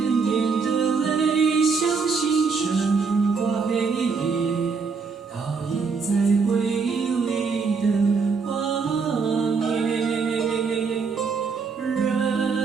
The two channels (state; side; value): quieter; left; 4.9 dB